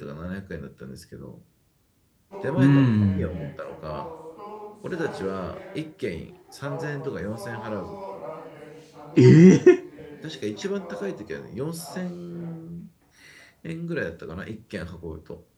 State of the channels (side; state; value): both; identical; correlation 1.00